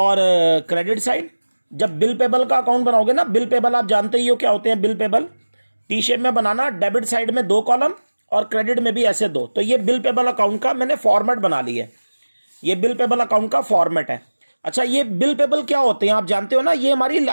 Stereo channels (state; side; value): inverted; both; correlation -1.00